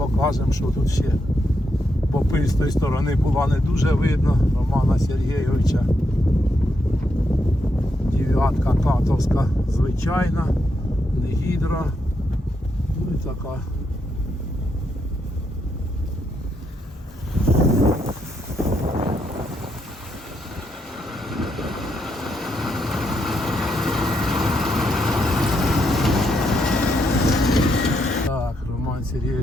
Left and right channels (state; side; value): normal; both; correlation 0.80